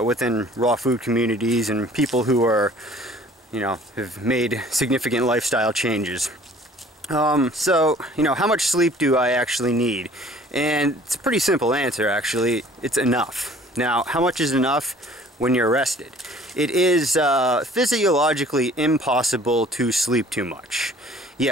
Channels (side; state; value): both; normal; correlation 0.52